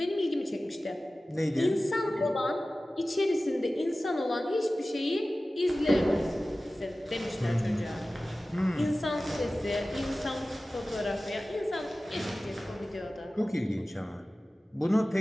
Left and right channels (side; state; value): both; normal; correlation 0.96